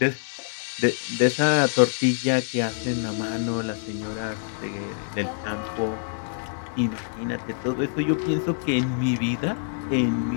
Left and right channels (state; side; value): silent; right; 61 dB below the other